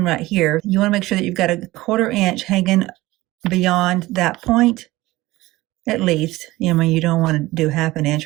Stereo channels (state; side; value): quieter; left; 18.7 dB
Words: right here. You want to make sure that you've got a 1/4 inch hanging beyond that point, at least. You know, you don't want to do 1/2